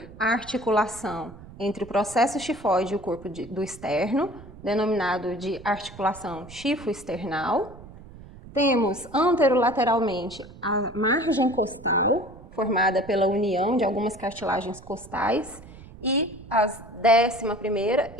a articulação entre o processo xifoide e o corpo do externo, denominado de articulação xifoexternal. Temos anterolateralmente a margem costal, formada pela união de algumas cartilagens costais, e as 11ª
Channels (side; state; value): right; noise; rumble, 18 dB below the sound